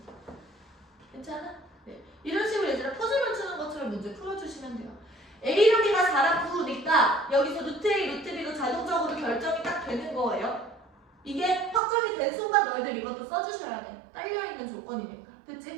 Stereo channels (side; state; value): left; drops out; at 11.8 s